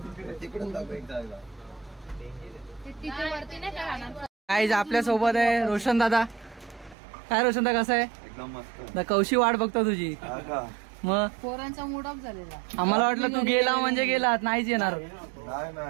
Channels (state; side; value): drops out; left; at 7.0 s